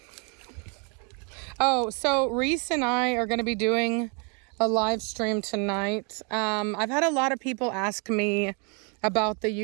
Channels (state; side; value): quieter; left; 35.8 dB